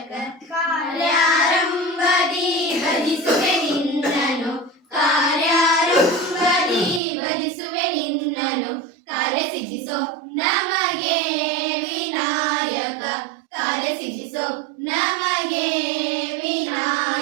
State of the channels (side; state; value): left; drops out; at 7.0 s